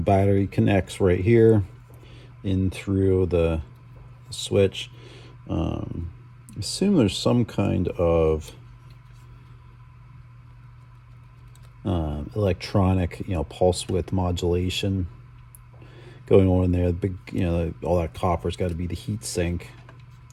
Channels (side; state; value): both; identical; correlation 1.00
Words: connects right here in through the switch. Assume there's some kind of electronic, pulse width modulation going on in there. The big, all that copper's got to be the heat sink,